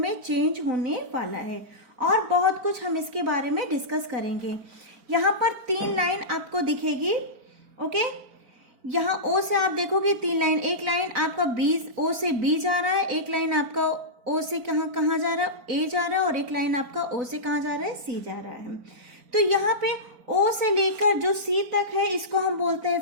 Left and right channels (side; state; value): left; late; 4.0 ms